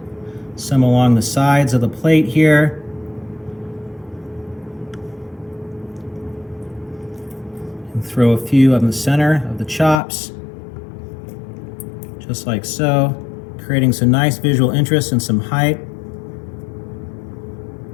some along the sides of the plate here. And throw a few in the center of the chops, just like so, creating some nice visual interest and some height.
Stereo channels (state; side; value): drops out; right; at 10.0 s